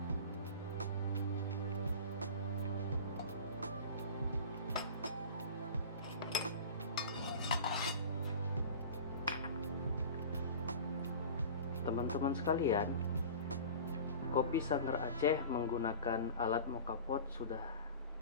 Teman-teman sekalian, kopi Sanger Aceh menggunakan alat moka pot sudah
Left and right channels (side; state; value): both; inverted; correlation -0.37